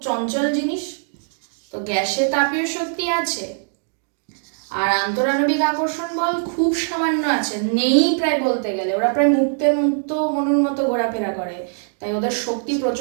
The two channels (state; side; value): silent; left; digital silence